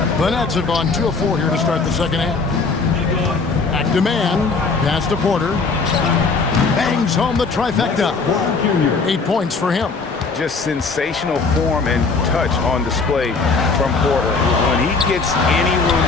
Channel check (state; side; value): quieter; right; 4.4 dB